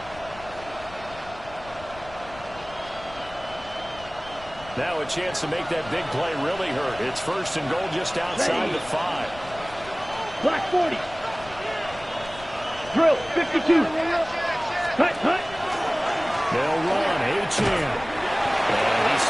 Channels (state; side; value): noise; left; rumble, 18 dB below the sound